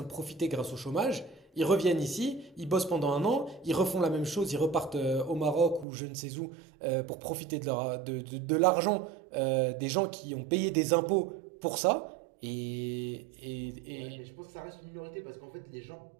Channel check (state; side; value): drops out; left; at 5.9 s